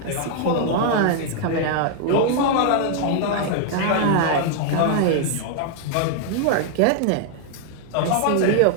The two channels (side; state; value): both; different; correlation 0.00